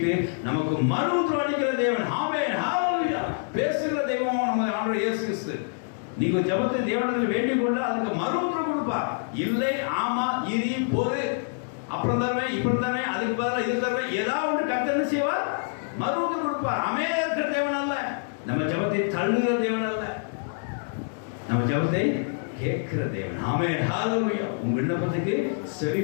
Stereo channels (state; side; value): silent; right; digital silence